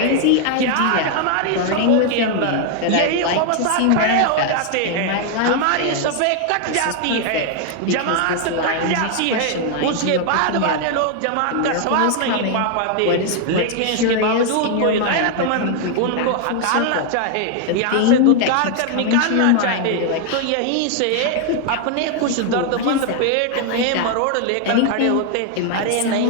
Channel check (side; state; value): both; different; correlation 0.00